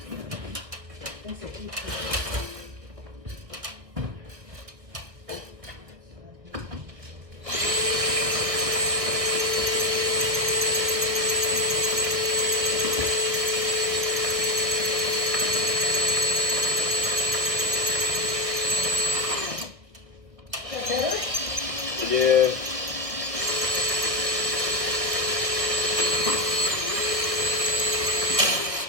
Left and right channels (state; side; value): late; left; 1.6 ms